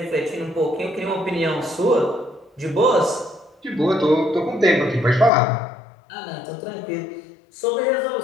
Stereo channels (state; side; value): drops out; right; at 5.3 s